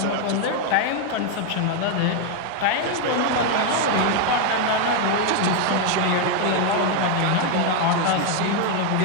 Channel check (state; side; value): different; both; correlation 0.01